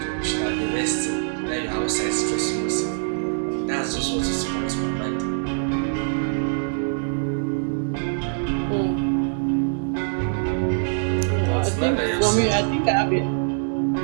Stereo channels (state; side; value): silent; left; digital silence